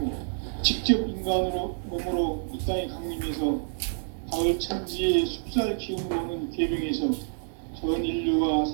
직접 인간으로 몸으로 이 땅에 강림해서 가을 천지의 숲살 기운으로 오는 계병에서 전 인류가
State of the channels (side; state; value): left; silent; digital silence